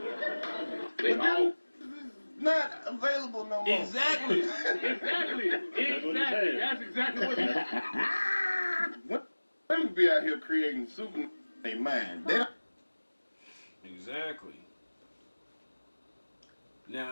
They all not available no more. Exactly. Exactly. That's exactly what it is. Women be out here creating super in their mind. They don't. Exactly.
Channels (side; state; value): both; inverted; correlation -1.00